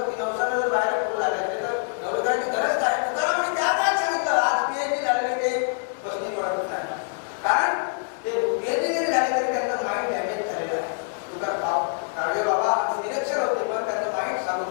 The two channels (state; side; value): silent; right; digital silence